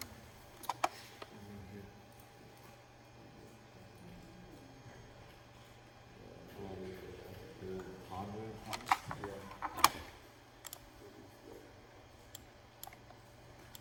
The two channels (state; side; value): identical; both; correlation 1.00